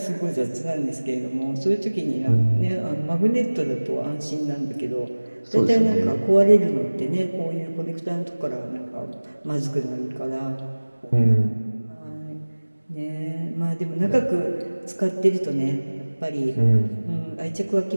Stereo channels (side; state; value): both; inverted; correlation -1.00